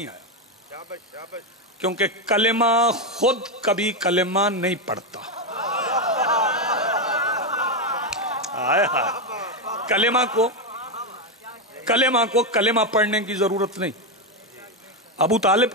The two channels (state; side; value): normal; both; correlation 0.07